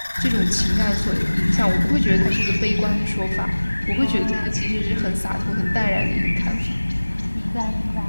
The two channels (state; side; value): inverted; both; correlation -1.00